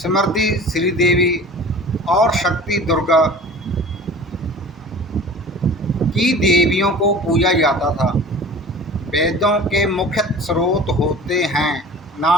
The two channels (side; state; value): both; normal; correlation 0.41